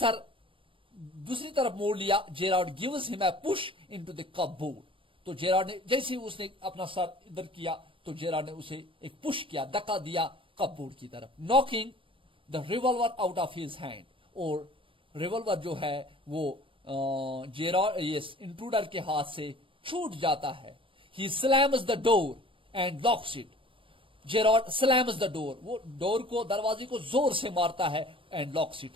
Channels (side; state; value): left; late; 0.25 ms